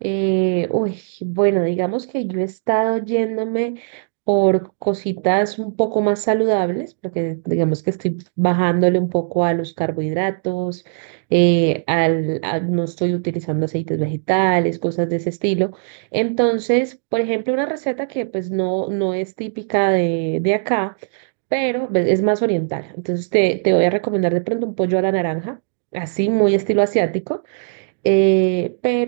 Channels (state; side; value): silent; left; digital silence